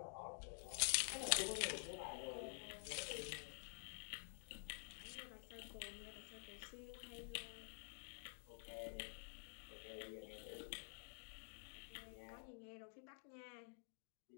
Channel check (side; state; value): right; silent; digital silence